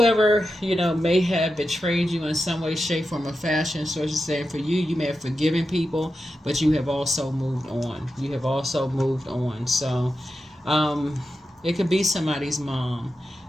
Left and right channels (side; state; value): both; normal; correlation 0.90